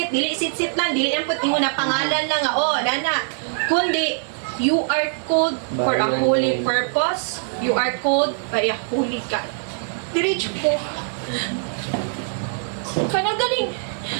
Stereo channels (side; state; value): left; silent; digital silence